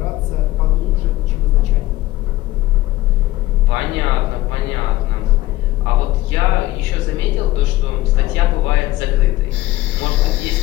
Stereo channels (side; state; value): right; quieter; 17.0 dB